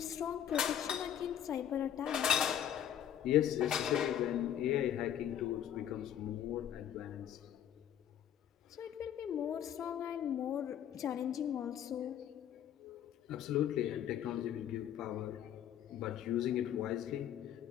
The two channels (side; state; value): right; quieter; 10.1 dB